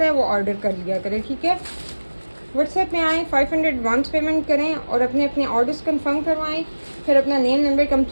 है, वो ऑर्डर कर लिया करे, ठीक है। व्हाट्सएप में आएँ, 500 एडवांस पेमेंट करें और अपने अपने ऑर्डर्स कंफर्म करवाएं, फिर अपना नेम, नंबर,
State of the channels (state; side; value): inverted; both; correlation -1.00